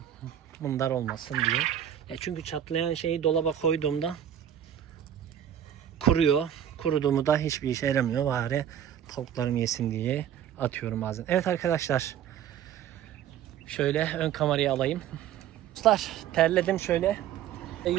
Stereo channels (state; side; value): quieter; left; 10.1 dB